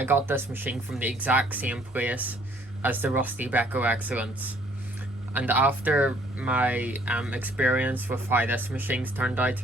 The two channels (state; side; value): normal; both; correlation 0.61